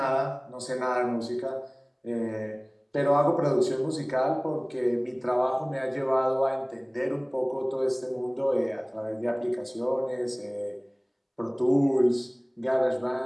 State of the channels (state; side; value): identical; both; correlation 1.00